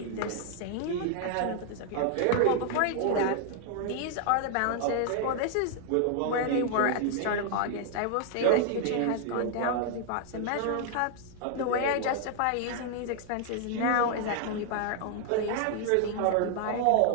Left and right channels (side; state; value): both; different; correlation 0.00